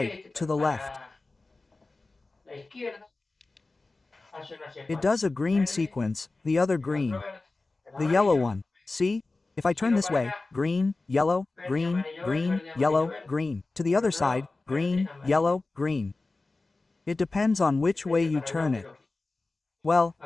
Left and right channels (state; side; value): quieter; right; 3.4 dB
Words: to the left. It does a green sequence, the other green. The yellow one. See? If I turn this way, green, yellow, green, green, yellow, green. To the other side, green, yellow, green. It depends on which way you turn it. Well,